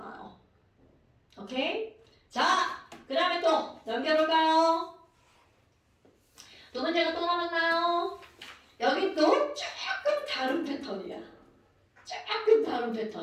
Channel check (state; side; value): identical; both; correlation 1.00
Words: 오케이? 자, 그 다음에 또 넘겨볼까요? 두 문제가 또 남았나요? 여기 또 조금 다른 패턴이야.